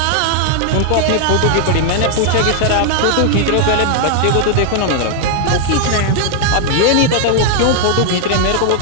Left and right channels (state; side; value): different; both; correlation 0.00